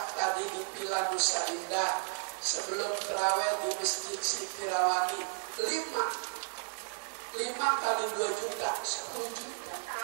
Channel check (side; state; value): left; silent; 55 dB below the other